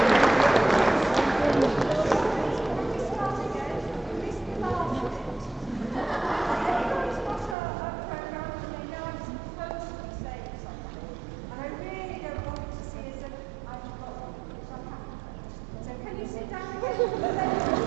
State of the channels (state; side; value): drops out; left; at 7.6 s